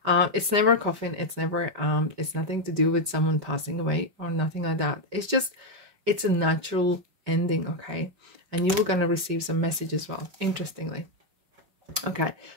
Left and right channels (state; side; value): late; left; 5.1 ms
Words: It's never a coffin. It's never it's nothing to do with someone passing away or nothing like that. It's just, it's a natural ending, okay? And you were going to receive some message as well, interestingly. Okay,